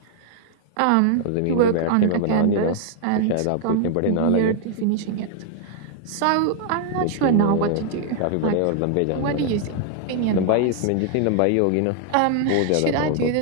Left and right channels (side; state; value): both; different; correlation 0.00